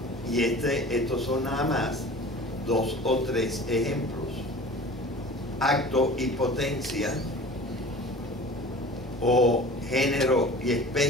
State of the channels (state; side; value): normal; both; correlation 0.41